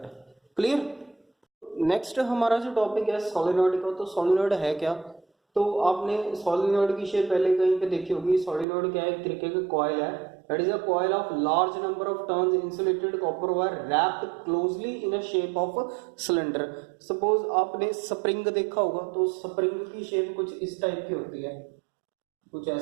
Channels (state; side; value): drops out; left; at 8.7 s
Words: क्लियर? नेक्स्ट हमारा जो टॉपिक है सोलेनॉइड का। तो सोलेनॉइड है क्या? तो आपने सोलेनॉइड की शेप पहले कहीं पे देखी होगी। सोलेनॉइड क्या है? एक तरीके का कॉइल है, that is a coil of large number of turns insulated copper wire wrapped closely in a shape of cylinder. Suppose आपने स्प्रिंग देखा होगा, तो स्प्रिंग की शेप कुछ इस टाइप की होती है, कुछ